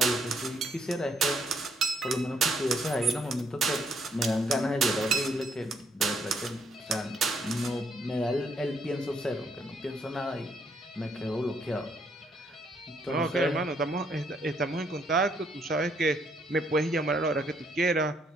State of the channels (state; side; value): normal; both; correlation 0.70